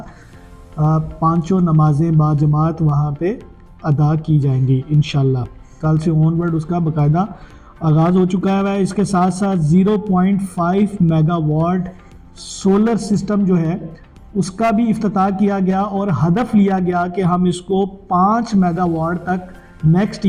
5 نمازیں باجماعت وہاں پہ ادا کی جائیں گی انشاءاللہ۔ کل سے آن ورڈ اس کا باقاعدہ آغاز ہو چکا ہے۔ اس کے ساتھ ساتھ 0.5 میگا واٹ سولر سسٹم جو ہے اس کا بھی افتتاح کیا گیا اور ہدف لیا گیا کہ ہم اس کو 5 میگا واٹ تک نیکسٹ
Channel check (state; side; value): identical; both; correlation 1.00